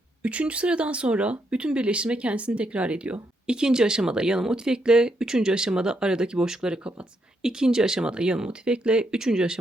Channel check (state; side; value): normal; both; correlation 0.78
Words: 3. sıradan sonra bütün birleştirme kendisini tekrar ediyor. İkinci aşamada yana motif ekle, üçüncü aşamada aradaki boşlukları kapat. İkinci aşamada yana motif ekle, üçüncü